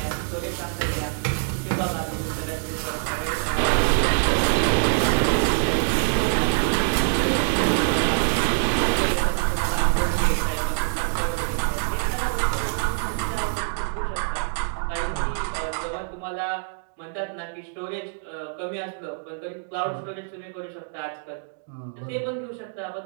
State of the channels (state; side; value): silent; left; digital silence